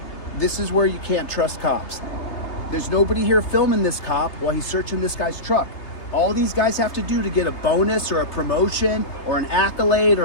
This is where you can't trust cops. There's nobody here filming this cop while he's searching this guy's truck. All these guys have to do to get a bonus or a promotion or an accolade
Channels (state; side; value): late; right; 3.3 ms